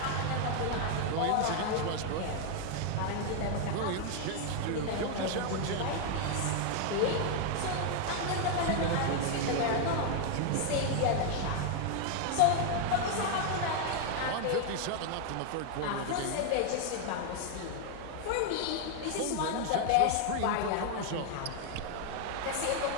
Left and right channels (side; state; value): both; different; correlation 0.00